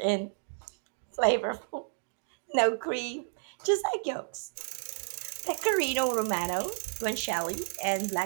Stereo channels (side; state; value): left; silent; digital silence